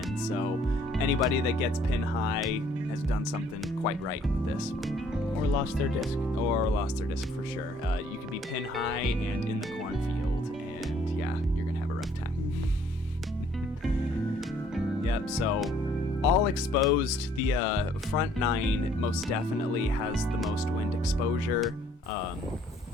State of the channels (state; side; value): normal; both; correlation 0.61